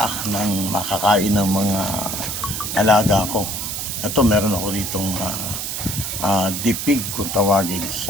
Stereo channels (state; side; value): noise; right; hiss, 4 dB below the sound